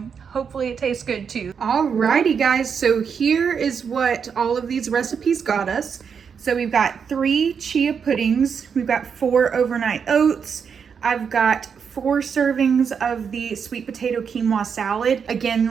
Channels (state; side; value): quieter; left; 6.6 dB